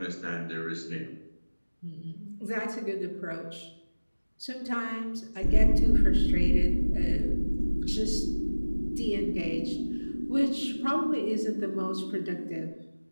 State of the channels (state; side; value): inverted; both; correlation -1.00